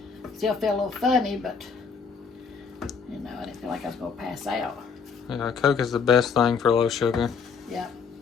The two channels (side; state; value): right; quieter; 5.7 dB